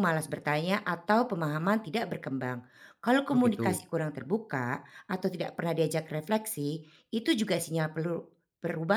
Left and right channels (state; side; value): identical; both; correlation 1.00